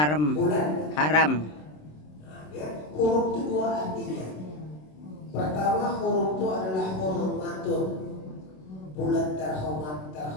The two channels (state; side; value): late; right; 27 ms